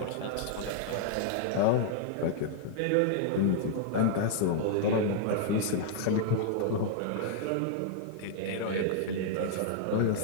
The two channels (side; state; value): both; different; correlation -0.01